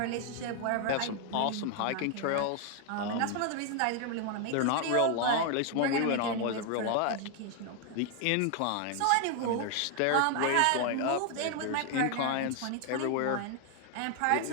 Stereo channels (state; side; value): different; both; correlation 0.00